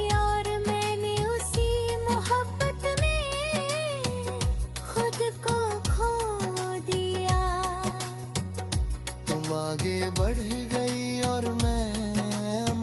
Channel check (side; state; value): both; identical; correlation 1.00